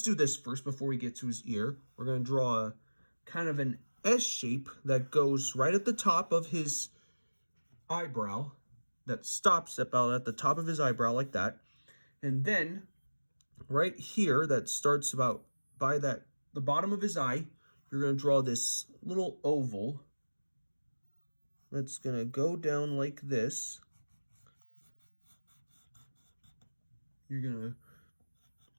do this first before we get to his ear. We're going to draw a kind of an S shape that goes right at the top of his eyebrow, that stops about at the top of his eyebrow like that. And then right here, that starts about by the bottom of his eye, you're going to draw this little oval that's going to go down like this. You're going to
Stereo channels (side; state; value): both; inverted; correlation -1.00